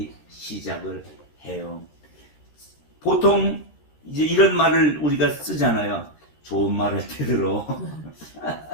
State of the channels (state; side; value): late; right; 13 ms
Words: 시작을 해요. 보통 이제 이런 말을 우리가 쓰잖아요. 좋은 말 할 때 들어.